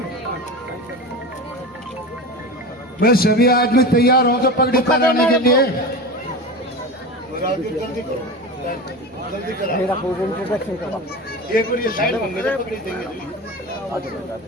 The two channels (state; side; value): normal; both; correlation 0.28